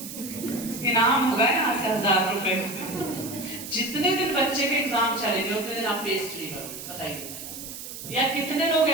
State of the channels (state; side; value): noise; right; hiss, 10 dB below the sound